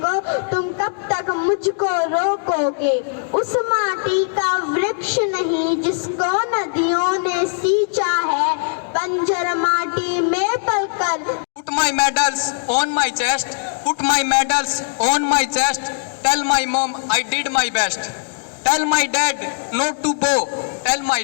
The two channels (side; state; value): right; silent; digital silence